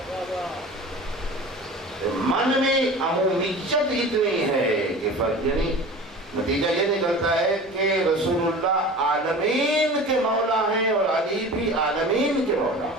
من میں عمومیت اتنی ہے کہ فرق، یعنی نتیجہ یہ نکلتا ہے کہ رسول اللہ عالمین کے مولا ہیں اور علی بھی عالمین کے مولا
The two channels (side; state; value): both; normal; correlation 0.38